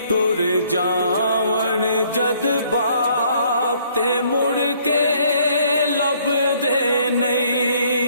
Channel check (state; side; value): inverted; both; correlation -0.63